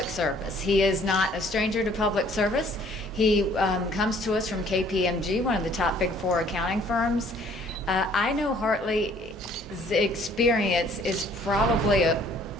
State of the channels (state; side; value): normal; both; correlation 0.58